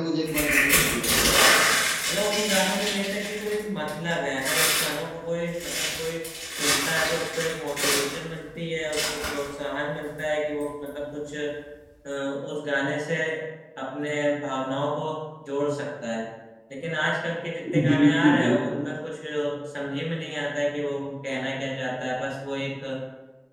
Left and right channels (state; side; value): identical; both; correlation 1.00